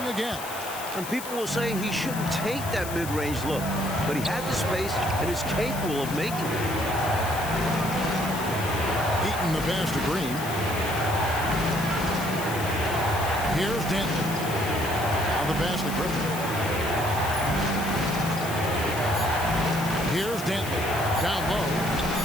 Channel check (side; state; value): left; noise; hiss, 11 dB below the sound